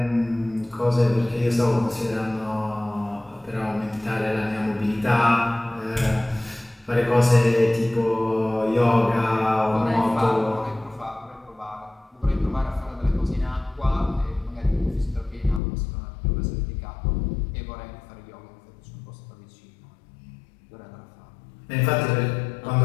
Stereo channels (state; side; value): drops out; right; at 15.6 s